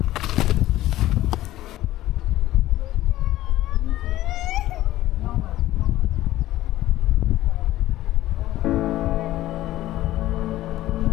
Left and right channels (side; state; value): right; quieter; 15.1 dB